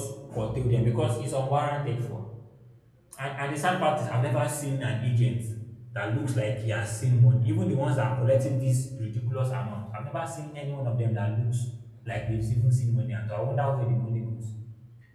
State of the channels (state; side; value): identical; both; correlation 1.00